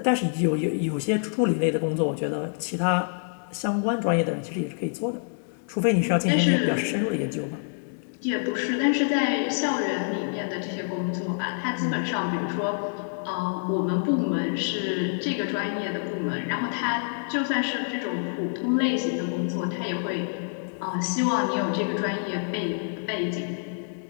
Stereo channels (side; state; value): right; silent; 60 dB below the other